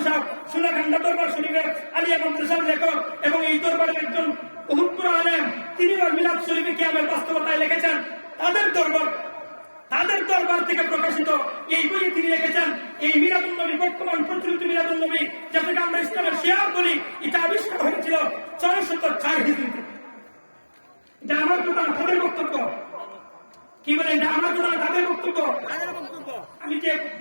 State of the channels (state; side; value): inverted; both; correlation -1.00